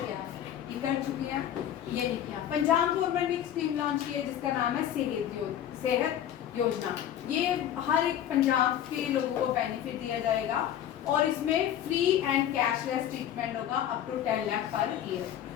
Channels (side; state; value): right; quieter; 10.6 dB